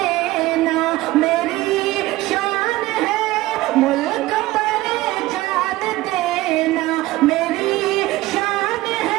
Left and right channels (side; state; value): left; quieter; 17.9 dB